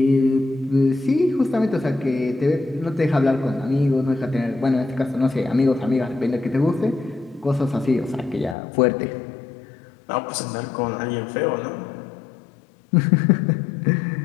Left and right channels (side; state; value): right; drops out; at 8.6 s